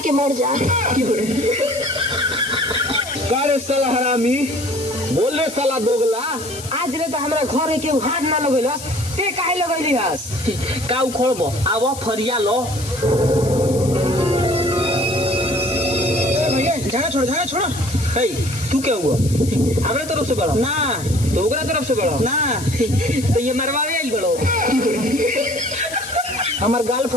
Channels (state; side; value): noise; left; hiss, 12 dB below the sound